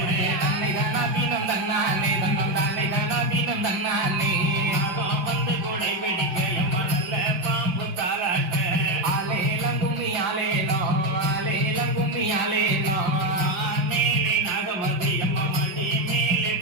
தன்னை தானாதீனம் தன்னானே தன்னம் தானே தானாதீனம் தன்னானே வந்து கொடை பிடிக்க எம்மா நல்ல பாம்பு காலாட்ட ஆலேலங்கும்மி ஆலேலோ ஆலேலங்கும்மி ஆலேலோ மேலே நாகமதி அம்மா மடி மேலே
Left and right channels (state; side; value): late; left; 5.6 ms